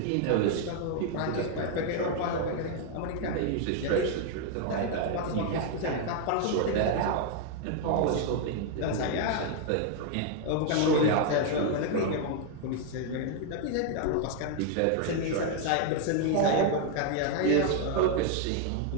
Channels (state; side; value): different; both; correlation 0.00